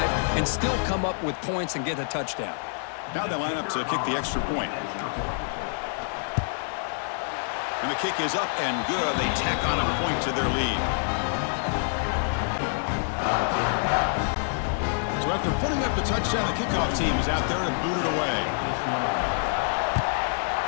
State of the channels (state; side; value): silent; right; digital silence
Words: and still come up with points and get a touchdown. Now they line up to kick the extra point. And the kick is up and good. They tack on a point to their lead. So after putting up the touchdown, the kickoff team is out there to boot it away.